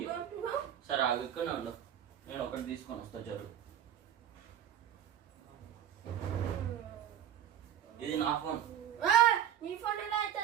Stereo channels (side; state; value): left; quieter; 10.2 dB